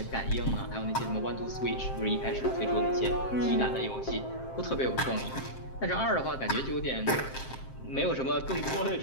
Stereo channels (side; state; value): right; late; 7.6 ms